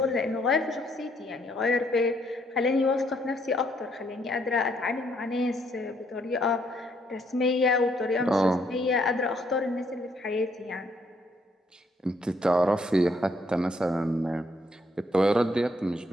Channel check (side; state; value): both; normal; correlation 0.70